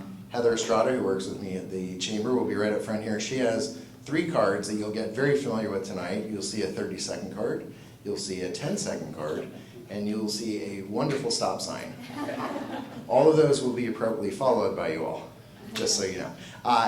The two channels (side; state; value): both; identical; correlation 1.00